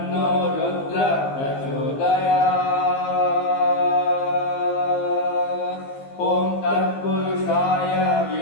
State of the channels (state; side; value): late; right; 15 ms